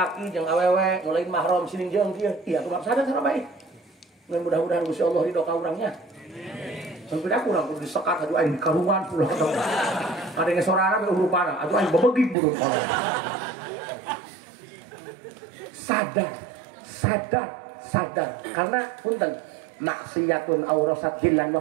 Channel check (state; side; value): drops out; left; at 12.4 s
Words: jeung awewe ngulain mahram sining jeung kieu, iya tuh sadar sana baik. Mudah-mudahan Gusti Allah ridho ka urangnya. Sampai aku urang kudu disekat atuh aing karuan pula ketemu. Ada ngesorana be urupana, atuh aing bebegik buruk. Sadar karena punten maksiatun aurasat hillan